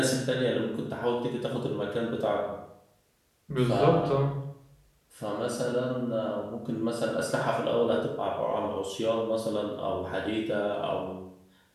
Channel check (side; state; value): both; identical; correlation 1.00